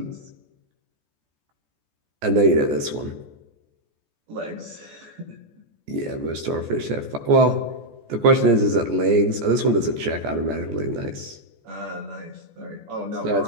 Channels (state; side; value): late; left; 14 ms